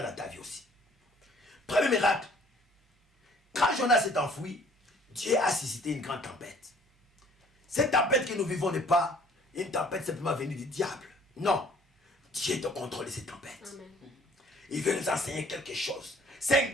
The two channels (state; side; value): normal; both; correlation 0.56